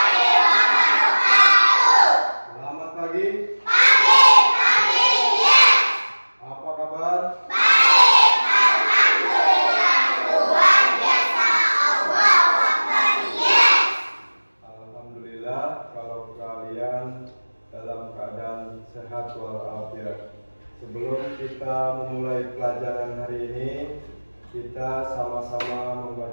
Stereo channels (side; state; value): both; inverted; correlation -1.00